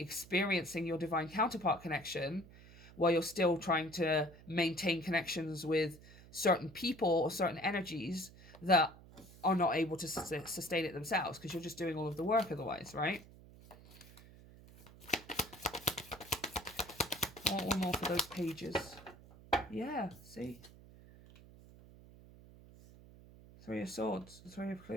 your divine counterpart connection while you're still trying to maintain connections with certain people or certain energies that are not able to sustain it themselves, because you're just doing all of the work otherwise, right? I want one more for those pages. Yeah, see? Three of Swords, the Three of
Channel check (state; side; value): noise; right; hum, 20 dB below the sound